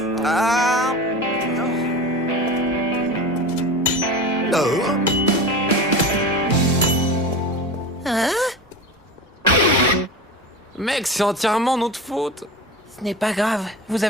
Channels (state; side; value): normal; both; correlation 0.30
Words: Ah. Oh. Hein? Mec, c'est entièrement notre faute. Ce n'est pas grave, vous